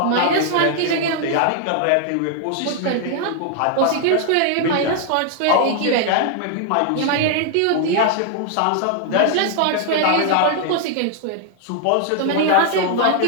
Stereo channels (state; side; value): different; both; correlation 0.00